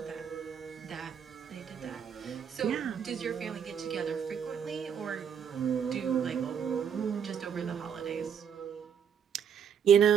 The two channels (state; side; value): quieter; left; 7.8 dB